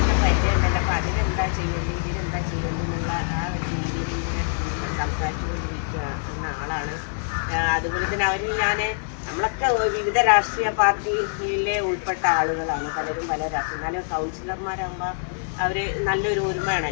പരിചയമുണ്ടല്ലോ. അപ്പോൾ അതിനെന്താ ചെയ്യേണ്ടത്, ഇതിനെന്താ ചെയ്യേണ്ടത് എന്നുള്ള ആ ഒരു രീതിയിൽ ഇങ്ങനെ സംസാരിച്ചുകൊണ്ടിരിക്കുന്ന ആളാണ്. അതുപോലെ തന്നെ അവരിൽ നമ്മളൊക്കെ വിവിധ രാഷ്ട്രീയ പാർട്ടിയിലെ ഉൾപ്പെട്ട ആളുകളാണ്, പലരും പല രാഷ്ട്രീയ. എന്നാലും കൗൺസിലർമാരാകുമ്പോൾ അവർ നല്ലൊരു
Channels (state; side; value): silent; right; 62 dB below the other